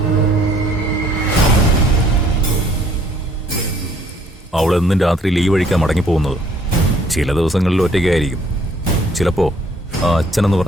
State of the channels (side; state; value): both; normal; correlation 0.61